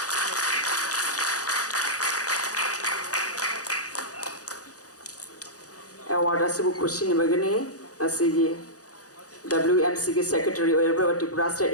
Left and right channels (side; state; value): right; late; 0.67 ms